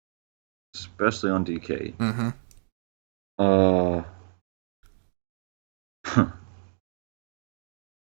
especially on DK. Mm-hmm.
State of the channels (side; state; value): left; silent; digital silence